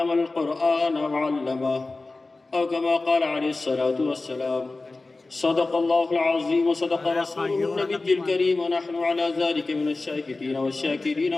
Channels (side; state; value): right; quieter; 3.4 dB